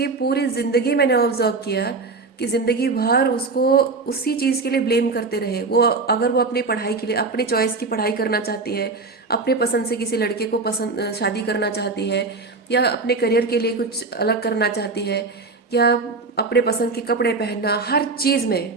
पूरी जिंदगी मैंने ऑब्जर्व किया कि जिंदगी भर उसको उसी चीज़ के लिए ब्लेम करते रहे। वो अगर वो अपनी पढ़ाई के लिए अपने चॉइस की पढ़ाई करना चाहती है, अपने पसंद से किसी लड़के को पसंद शादी करना चाहती है, या अपने करियर के लिए कुछ अलग करना चाहती है, या अपने पसंद के कपड़े पहनना, हर चीज़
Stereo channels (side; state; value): left; quieter; 3.9 dB